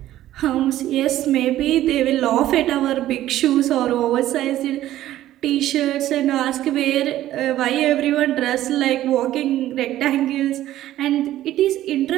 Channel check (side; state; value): left; quieter; 13.8 dB